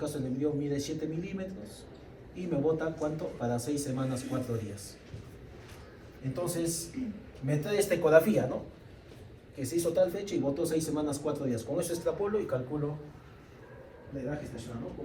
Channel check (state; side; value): identical; both; correlation 1.00